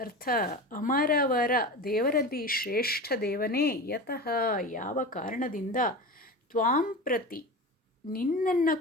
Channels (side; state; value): both; normal; correlation 0.28